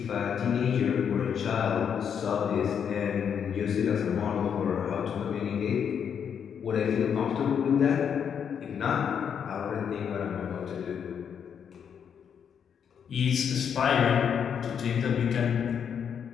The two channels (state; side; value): quieter; right; 7.7 dB